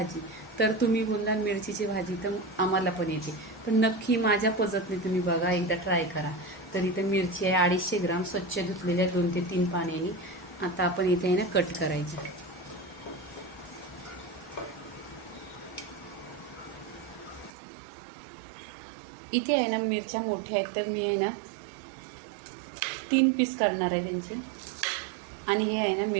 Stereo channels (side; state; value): left; drops out; at 17.5 s